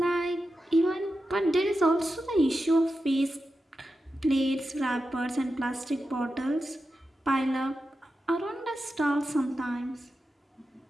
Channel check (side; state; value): both; normal; correlation 0.90